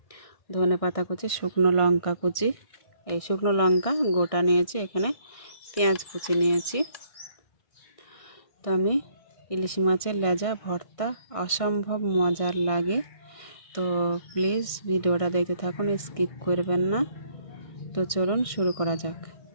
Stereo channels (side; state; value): right; late; 1.6 ms